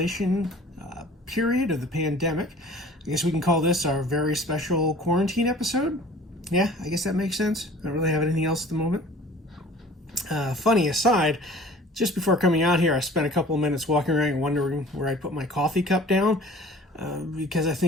period of the pandemic, I guess we can call this our very special quarantine episode. Yeah, I guess that makes sense. I don't really have anything else at the moment. Funny aside, just before coming out here, I spent a couple of minutes walking around wondering where I put my coffee cup down. Because I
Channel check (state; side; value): normal; both; correlation 0.47